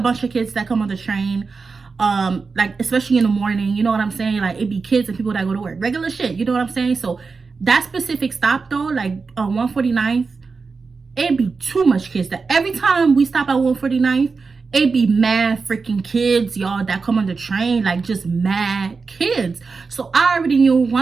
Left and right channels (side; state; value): left; quieter; 4.6 dB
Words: of kids that come on the train, like, especially in the morning, you know what I'm saying? Like, it be kids and people that go to work, regular shit, you know what I'm saying? So that specific stop though, like 149th, it be too much kids. That every time we stop at 149th, it be mad freaking kids, y'all, that come on the train, like just mad kids. So I already knew